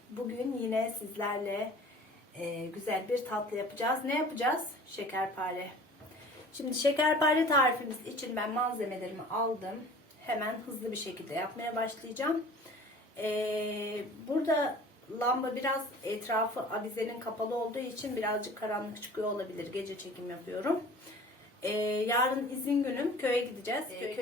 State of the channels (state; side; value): normal; both; correlation 0.45